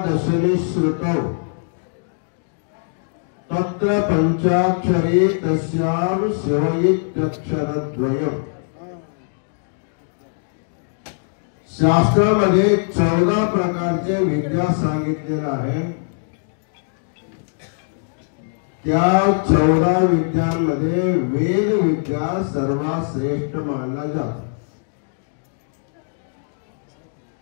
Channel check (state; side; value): silent; right; digital silence